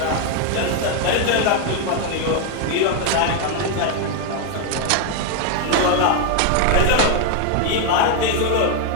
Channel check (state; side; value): different; both; correlation 0.01